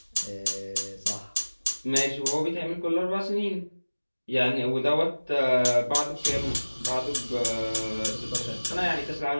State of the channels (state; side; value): inverted; both; correlation -1.00